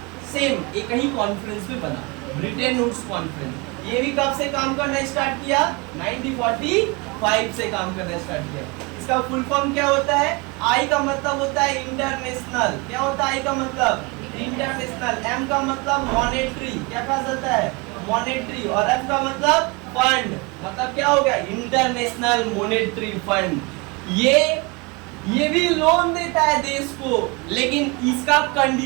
सेम एक ही कॉन्फ्रेंस में बना, ब्रिटेन वुड्स कॉन्फ्रेंस। ये भी कब से काम करना स्टार्ट किया? 1945 से काम करना स्टार्ट किया। इसका फुल फॉर्म क्या होता है? आई का मतलब होता है इंटरनेशनल। क्या होता है आई का मतलब? इंटरनेशनल। एम का मतलब मॉनेटरी, क्या कहा जाता है? मॉनेटरी। और एफ का मतलब फंड, मतलब क्या हो गया? International monetary fund. ये भी लोन देता है देश को, लेकिन इसका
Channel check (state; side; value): quieter; left; 27.5 dB